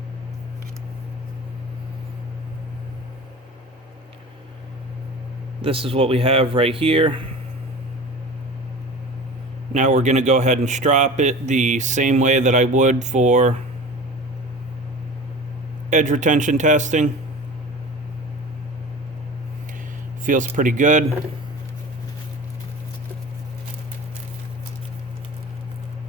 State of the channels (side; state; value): both; normal; correlation 0.36